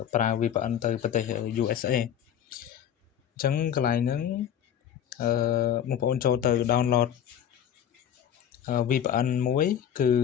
ប្រើ VPN ទៅប្រទេស USA អញ្ចឹងកន្លែងហ្នឹងបងប្អូនចូលទៅ download VPN មួយគឺ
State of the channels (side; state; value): right; quieter; 9.5 dB